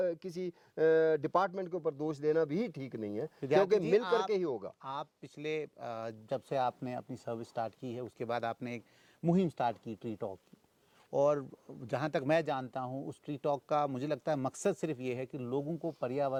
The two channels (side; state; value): both; identical; correlation 1.00